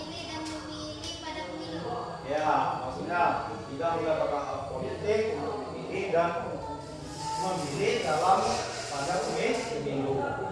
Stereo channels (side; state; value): both; identical; correlation 1.00